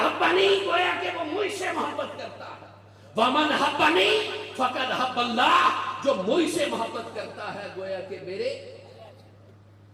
گویا کہ وہ مجھ سے محبت کرتا ہے، ومن احبنی فقد احب اللہ، جو مجھ سے محبت کرتا ہے گویا کہ میرے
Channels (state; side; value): identical; both; correlation 1.00